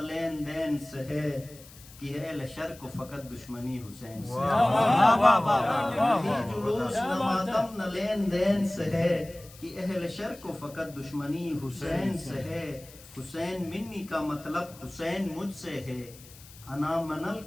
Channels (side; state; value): left; noise; hiss, 21 dB below the sound